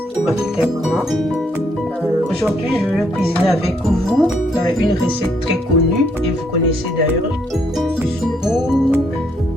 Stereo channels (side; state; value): both; normal; correlation 0.72